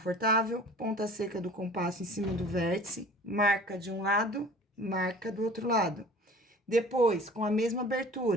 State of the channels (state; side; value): normal; both; correlation 0.45